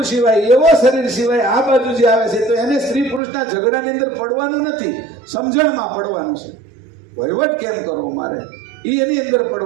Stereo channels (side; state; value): left; drops out; at 3.2 s